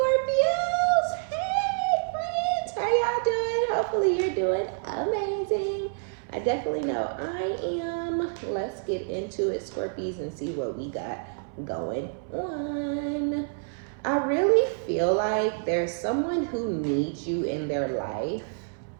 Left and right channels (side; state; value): left; silent; 60 dB below the other